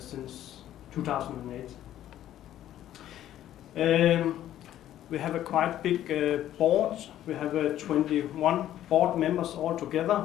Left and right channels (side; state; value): right; quieter; 12.3 dB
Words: 2008. We have a quite big board. We have 21 board members